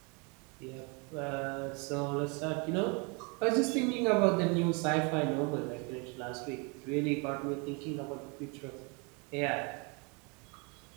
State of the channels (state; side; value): quieter; left; 31.8 dB